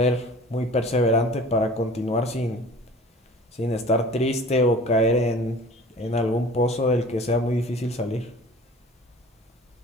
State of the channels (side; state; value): both; normal; correlation 0.44